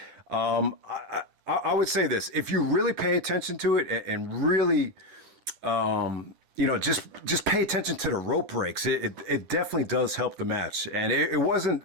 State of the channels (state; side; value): late; left; 10 ms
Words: I would say this: if you really pay attention to it and really, you know, just pay attention to the rope breaks, it definitely does help the match. And it